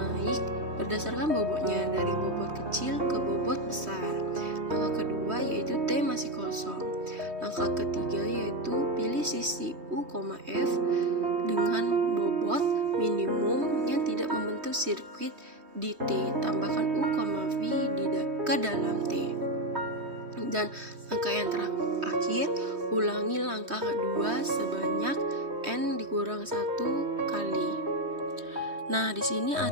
berdasarkan bobotnya dari bobot kecil ke bobot besar. Langkah kedua yaitu T masih kosong. Langkah ketiga yaitu pilih sisi U, F dengan bobot minimum yang tidak membentuk sirkuit di T. Tambahkan U, V ke dalam T. Dan langkah yang terakhir, ulangi langkah kedua sebanyak N dikurang 1 kali. Nah, di sini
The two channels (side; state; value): left; late; 3.2 ms